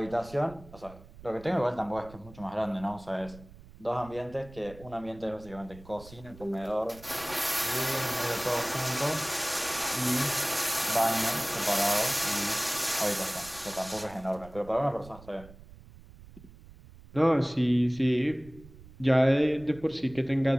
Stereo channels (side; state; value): right; noise; rumble, 20 dB below the sound